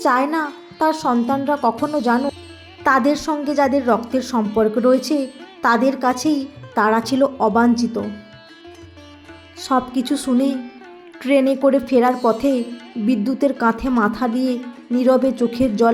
চায় না তার সন্তানরা কখনো জানো তাদের সঙ্গে যাদের রক্তের সম্পর্ক রয়েছে তাদের কাছেই তারা ছিল অবাঞ্ছিত। সব কিছু শুনে ট্রেনে করে ফেরার পথে বিদ্যুতের কাঁধে মাথা দিয়ে নীরবে চোখের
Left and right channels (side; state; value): both; identical; correlation 1.00